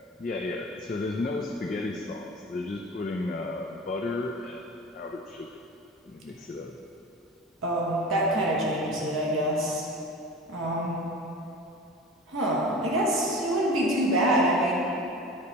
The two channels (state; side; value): normal; both; correlation 0.35